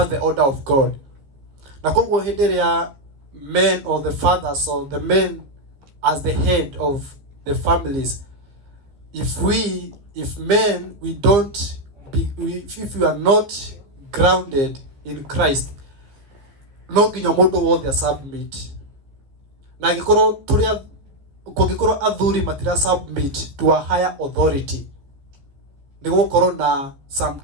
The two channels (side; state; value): left; late; 15 ms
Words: order of God. Na koguo hĩndĩ ĩrĩa men or the fathers or the men as the head of the families, if we are not grounded in Christ, no nginya mũndũ wothe submit. Na kũngĩkorwo athuri matira submit to a higher authority, nĩ gũkorwo na some